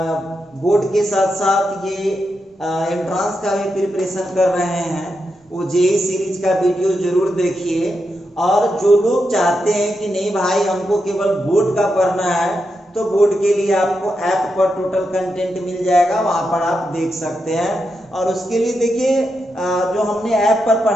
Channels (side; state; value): both; normal; correlation 0.86